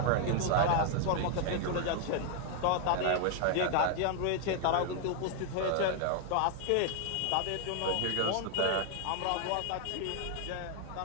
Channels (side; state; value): both; different; correlation 0.00